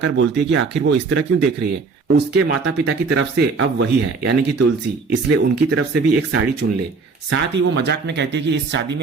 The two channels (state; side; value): quieter; left; 4.5 dB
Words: बोलती है कि आखिर वो इस तरह क्यों देख रही है। उसके माता पिता की तरफ से अब वही है, यानी कि तुलसी, इसलिए उनकी तरफ से भी एक साड़ी चुन ले। साथ ही वो मजाक में कहती है कि इस शादी